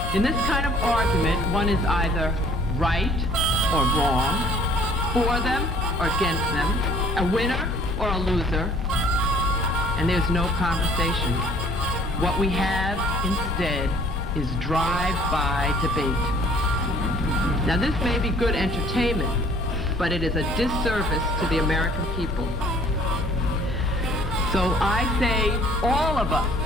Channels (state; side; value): normal; both; correlation 0.56